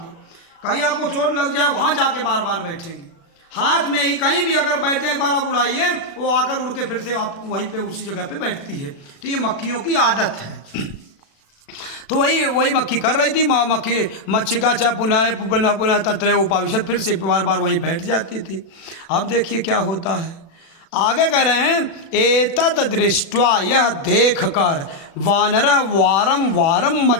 कहीं आपको चोट लग जाए वहाँ जाके बार बार बैठेंगे, हाथ में ही कहीं भी अगर बैठ जाए एक बार आप उड़ाइए, वो आकर उड़ के फिर से आप वहीं पे उसी जगह पे बैठती है। तो ये मक्खियों की आदत है। तो वही मक्खी कर रही थी। मक्खी मच्छिका च पुनः पुनः पुनः तत्र उपाविशत, फिर से बार बार वहीं बैठ जाती थी। अब देखिए क्या होता है, आगे कह रहे हैं, एतत् दृष्ट्वा, यह देख कर, वानरः वारम वारम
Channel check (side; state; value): right; late; 36 ms